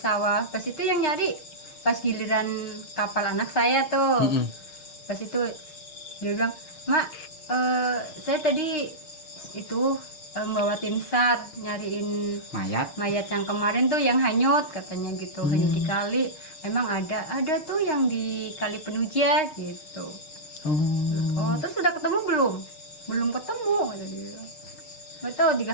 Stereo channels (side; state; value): right; late; 6.5 ms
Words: Pas itu yang nyari pas giliran kapal anak saya tuh. Pas itu dia bilang, "Mak, saya tadi itu bawa tim SAR nyariin mayat yang kemarin tuh yang hanyut," katanya gitu. Hanyut di kali. Emang ada tuh yang di Kali Penuja gitu. Oh, terus sudah ketemu belum? Belum ketemu, kata dia. Nggak tahu 3